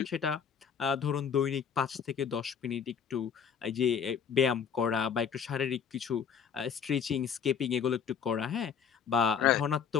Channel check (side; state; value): right; quieter; 7.2 dB